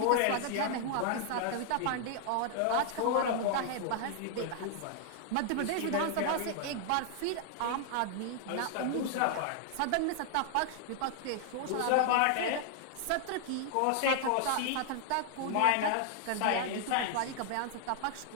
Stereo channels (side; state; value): both; different; correlation 0.00